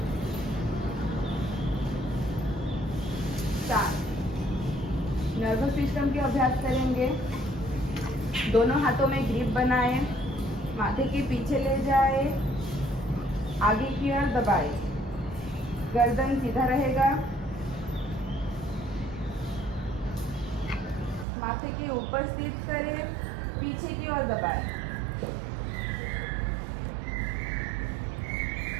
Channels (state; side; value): drops out; left; at 21.2 s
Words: नर्वस सिस्टम के अभ्यास करेंगे। दोनों हाथों में ग्रिप बनाएं, माथे के पीछे ले जाए, आगे की ओर दबाए, गर्दन सीधा रहेगा, माथे के ऊपर स्थित करें, पीछे की ओर दबाए।